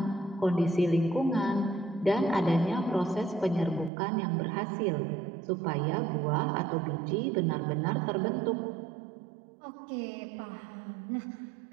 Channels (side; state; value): left; drops out; at 3.9 s